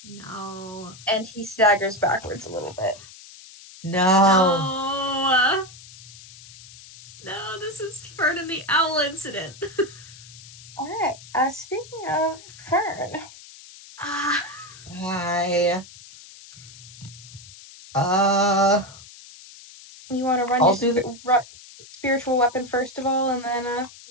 No. And he staggers backwards a little bit. No. No, this is Fern and the Owl incident. Alright, speaking of Fern. Hi. You want to run I'll your do the spiritual weapon first of all, and then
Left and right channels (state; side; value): noise; left; hiss, 19 dB below the sound